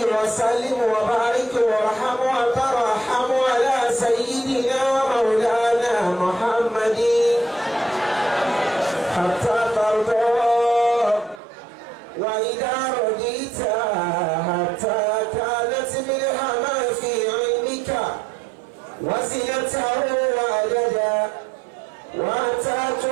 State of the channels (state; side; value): drops out; left; at 11.4 s